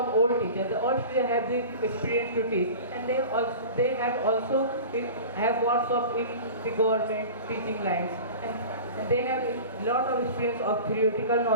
old teachers. The old teachers have the experience to teach, and they have also have workshops in the government teaching lines, and they have a lot of experience of theoretical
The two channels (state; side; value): inverted; both; correlation -0.36